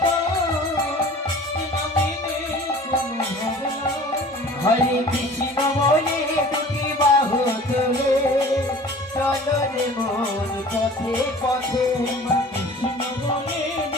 কেন মেনে কোনো ভাবনা। হরে কৃষ্ণ বলে দুটি বাহু তুলে চলো রে মন পথে পথে কৃষ্ণ বলে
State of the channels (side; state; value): both; normal; correlation 0.44